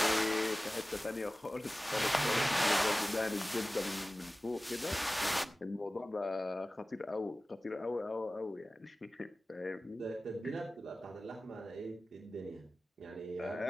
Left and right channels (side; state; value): both; normal; correlation 0.97